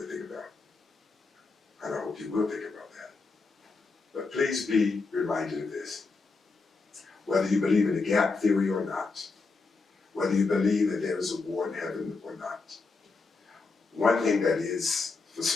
to think about. And I hope you will think about that. But please be reminded of this. Whether you believe in the gap theory or not, whether you believe that there is a war in heaven or not, one thing that is for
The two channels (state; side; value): quieter; right; 4.1 dB